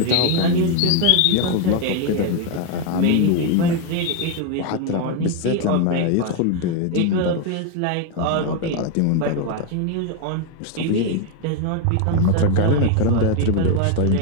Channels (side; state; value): both; different; correlation 0.01